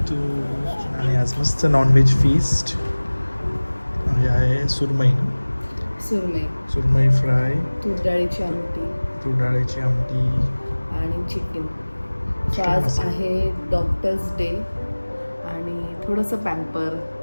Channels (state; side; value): inverted; both; correlation -1.00